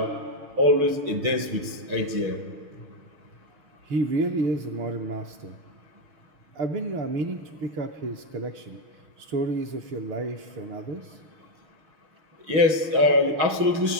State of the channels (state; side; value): late; left; 6.3 ms